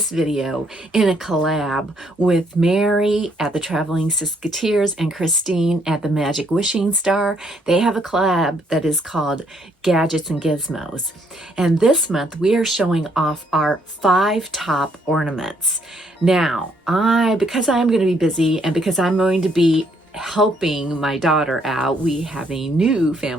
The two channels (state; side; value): normal; both; correlation 0.70